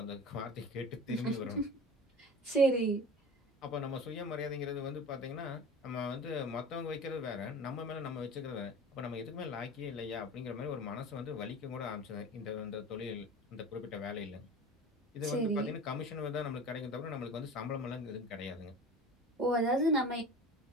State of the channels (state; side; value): normal; both; correlation 0.36